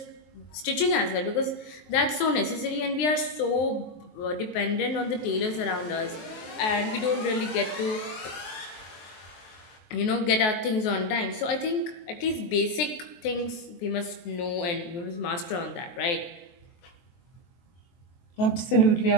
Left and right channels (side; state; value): right; late; 23 ms